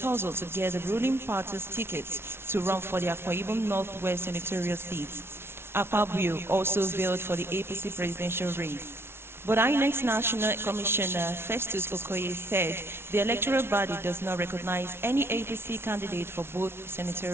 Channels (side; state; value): left; late; 0.12 ms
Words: to get the ruling party's tickets to run for the Akwa Ibom Northwest Senatorial seat. Pabio also veiled for the APC presidential race. But INEC's National Commissioner Festus Okoye said the electoral body does not recognize any APC candidate for both